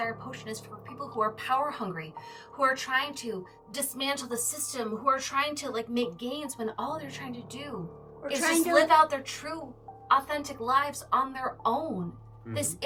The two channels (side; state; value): both; identical; correlation 1.00